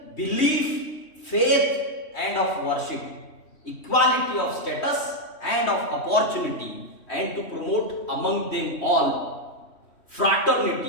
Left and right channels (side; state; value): right; late; 3.1 ms